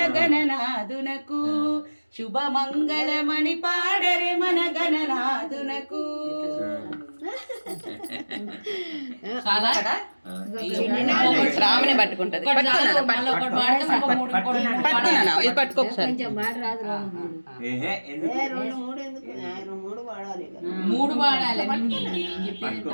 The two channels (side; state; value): both; inverted; correlation -1.00